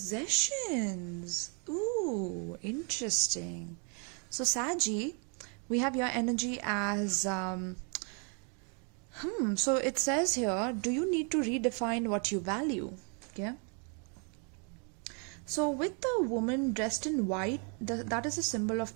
Ooh, interesting. So Saggy, we have your energy as so it says here, do you need to redefine what you value? Okay, so with the woman dressed in white, that is a symbol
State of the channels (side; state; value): left; quieter; 38.9 dB